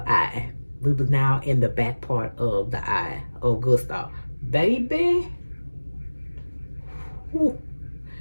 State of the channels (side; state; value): both; inverted; correlation -1.00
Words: eye. We was now in the back part of the eye of Gustav. Baby. Ooh.